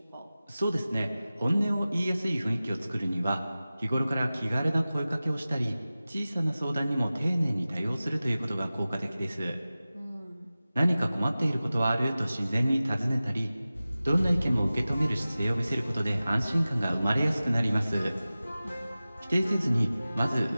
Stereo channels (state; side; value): inverted; both; correlation -0.96